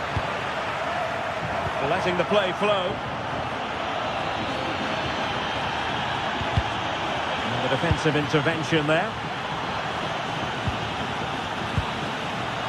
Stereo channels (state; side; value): identical; both; correlation 1.00